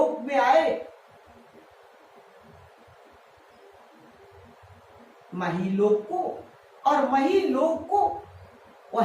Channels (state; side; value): identical; both; correlation 1.00